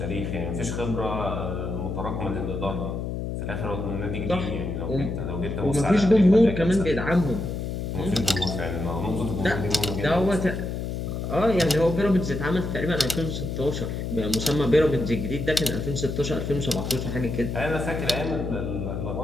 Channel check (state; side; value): noise; left; hum, 4 dB below the sound